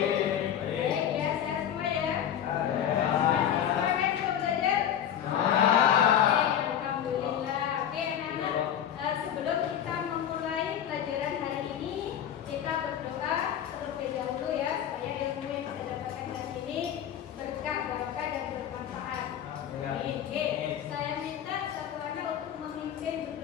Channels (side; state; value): right; quieter; 9.7 dB